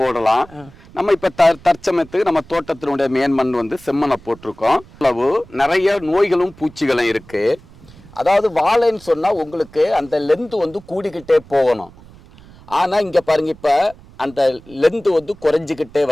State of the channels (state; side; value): noise; right; rumble, 23 dB below the sound